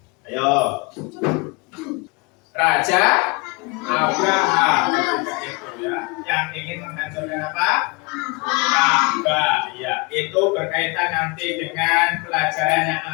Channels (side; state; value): right; quieter; 28.5 dB